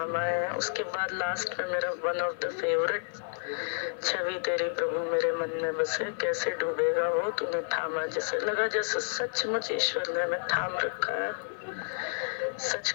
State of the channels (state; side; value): silent; right; digital silence